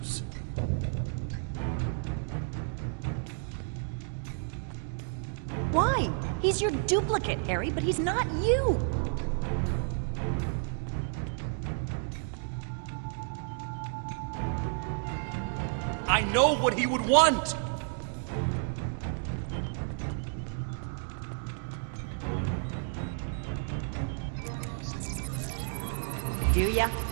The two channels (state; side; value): silent; left; 57 dB below the other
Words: Why? He's your duplicate, Harry, but he's not you! I know what he would want! Do ya?